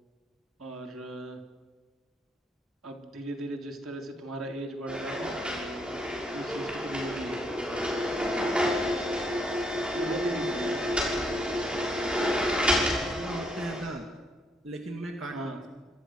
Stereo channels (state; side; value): normal; both; correlation 0.72